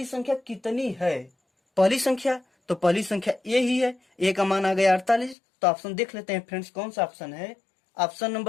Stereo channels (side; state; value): right; drops out; at 5.4 s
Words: संख्या कितनी है? पहली संख्या, तो पहली संख्या ए ही है। ए का मान आ गया 48। तो ऑप्शन देख लेते हैं फ्रेंड्स, कौन सा ऑप्शन है? ऑप्शन